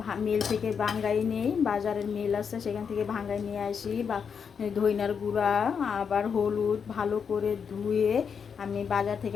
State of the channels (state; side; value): quieter; right; 6.6 dB